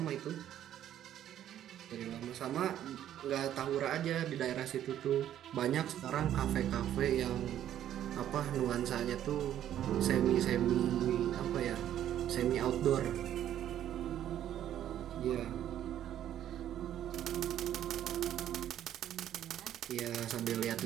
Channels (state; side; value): quieter; left; 11.2 dB